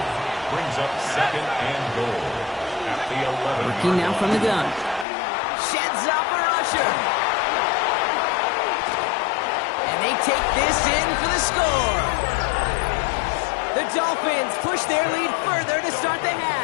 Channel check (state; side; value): drops out; right; at 5.1 s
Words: Brings up 2nd and goal. Working now from the gun. Sheds up a rusher. And they take this in for the score. The Dolphins push their lead further to start the